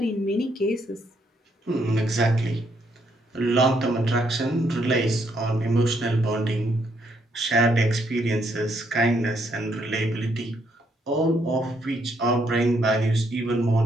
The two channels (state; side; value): normal; both; correlation 0.73